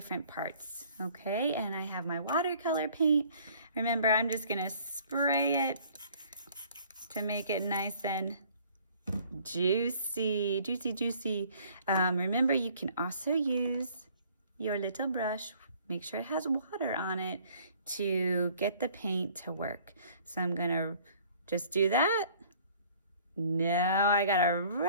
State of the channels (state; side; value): inverted; both; correlation -0.56